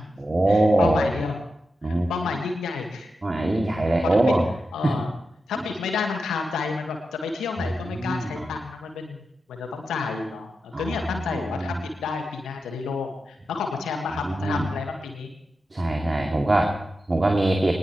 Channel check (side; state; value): both; normal; correlation 0.90